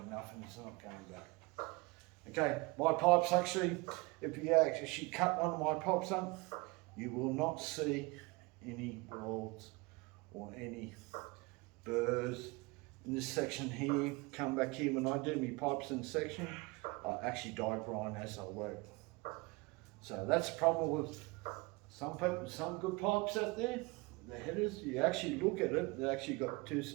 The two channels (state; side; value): quieter; left; 25.3 dB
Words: enough and it's not going back. Okay, my pipes actually, if you actually cut one of my pipes up, you will not see any welds or any burrs in this section here. Come back here, when I do my pipes in section, I actually die grind as I work. So that's the problem with some people, some good pipes out there. The headers, you actually look at it, they actually got two